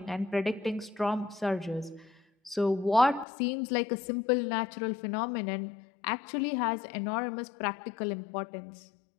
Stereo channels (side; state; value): right; drops out; at 3.2 s